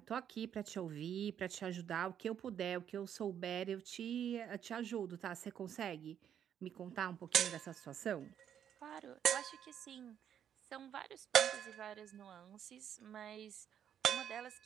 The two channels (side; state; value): left; quieter; 9.2 dB